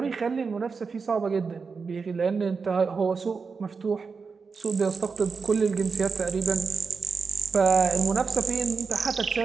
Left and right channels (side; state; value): left; quieter; 5.0 dB